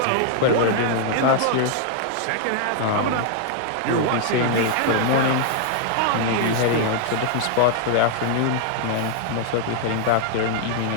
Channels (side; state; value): both; different; correlation 0.00